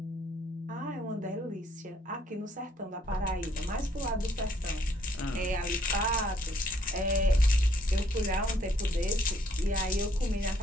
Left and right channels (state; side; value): normal; both; correlation 0.67